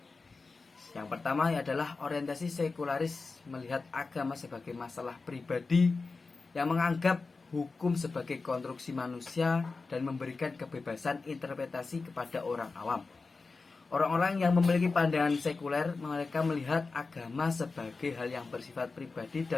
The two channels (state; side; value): quieter; right; 4.1 dB